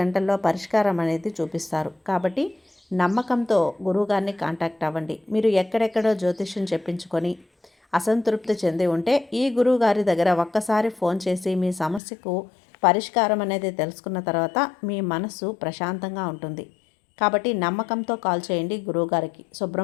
గంటల్లో పరిష్కారం అనేది చూపిస్తారు. కాబట్టి నమ్మకంతో గురువుగారిని కాంటాక్ట్ అవ్వండి. మీరు ఎక్కడెక్కడో జ్యోతిష్యం చెప్పించుకొని అసంతృప్తి చెంది ఉంటే ఈ గురువుగారి దగ్గర ఒక్కసారి ఫోన్ చేసి మీ సమస్యకు పరిష్కారం అనేది తెలుసుకున్న తర్వాత మీ మనస్సు ప్రశాంతంగా ఉంటుంది. కాబట్టి నమ్మకంతో కాల్ చేయండి గురువుగారికి.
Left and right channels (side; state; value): right; drops out; at 12.0 s